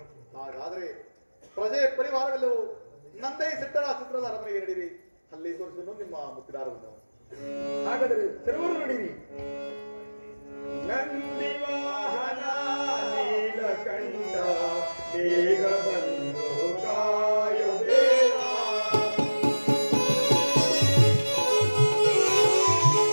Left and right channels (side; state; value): both; inverted; correlation -1.00